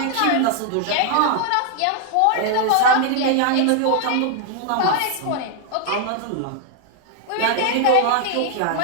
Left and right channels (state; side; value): different; both; correlation 0.00